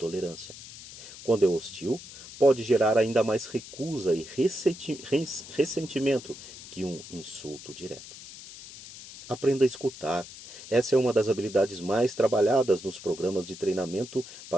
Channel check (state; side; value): noise; left; hiss, 15 dB below the sound